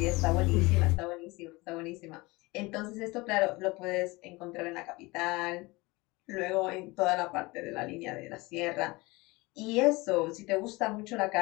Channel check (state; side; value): quieter; right; 23.3 dB